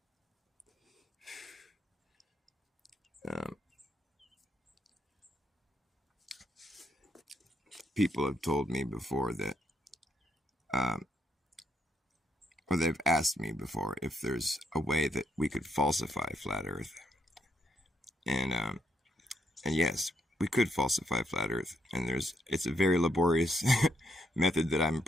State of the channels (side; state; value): both; normal; correlation 0.76